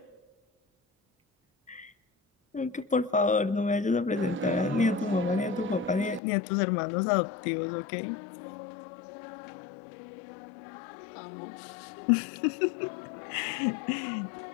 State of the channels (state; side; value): drops out; right; at 6.2 s